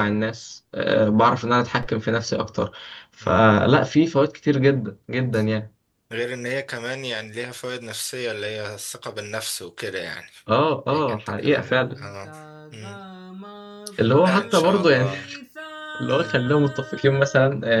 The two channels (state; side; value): identical; both; correlation 1.00